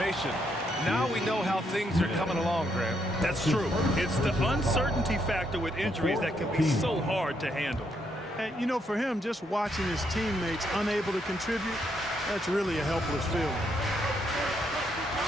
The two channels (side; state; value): both; normal; correlation 0.76